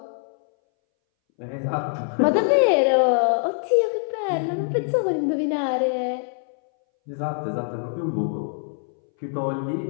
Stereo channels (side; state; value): right; silent; 61 dB below the other